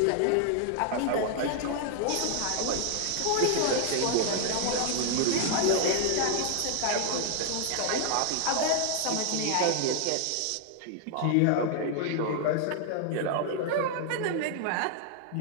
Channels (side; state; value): both; different; correlation 0.00